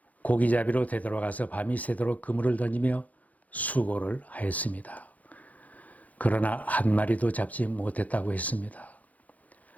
고기잡이로 되돌아가서 밤이 새도록 그물을 던지며 수고를 하였습니다. 그러나 한 마리도 잡지 못했다고 했습니다.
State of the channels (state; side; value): late; right; 0.075 ms